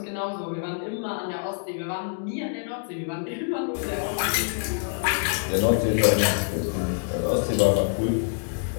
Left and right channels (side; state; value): right; silent; digital silence